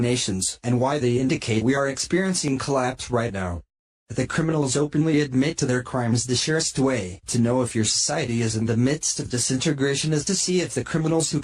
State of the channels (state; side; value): identical; both; correlation 1.00